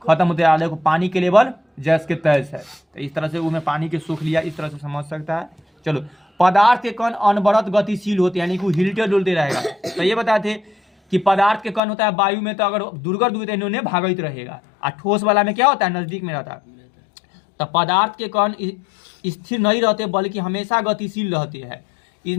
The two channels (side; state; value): right; drops out; at 11.8 s